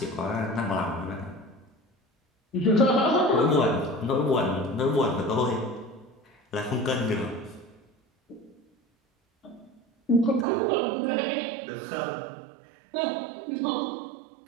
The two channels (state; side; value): drops out; left; at 10.5 s